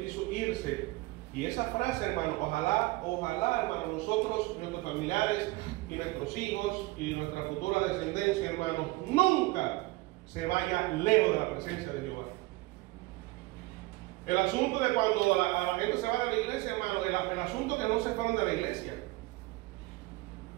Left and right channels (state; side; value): quieter; left; 21.1 dB